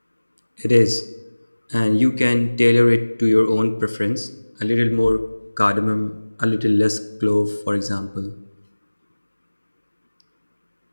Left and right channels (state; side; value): inverted; both; correlation -1.00